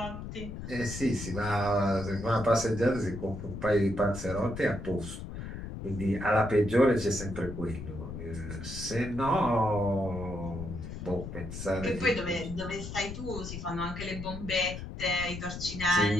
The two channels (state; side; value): noise; left; rumble, 8 dB below the sound